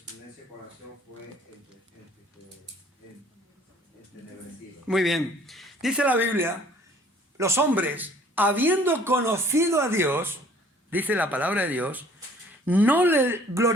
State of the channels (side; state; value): both; normal; correlation 0.56